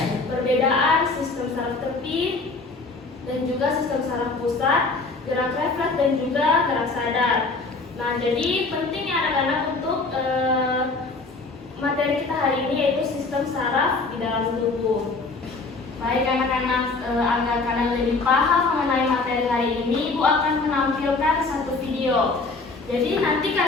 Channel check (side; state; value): right; quieter; 3.7 dB